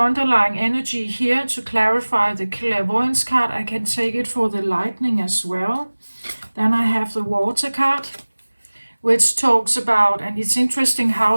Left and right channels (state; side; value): inverted; both; correlation -1.00